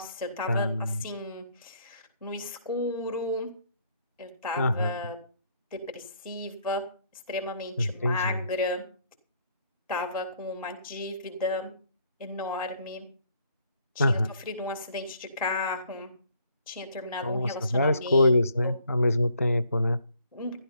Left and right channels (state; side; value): inverted; both; correlation -0.65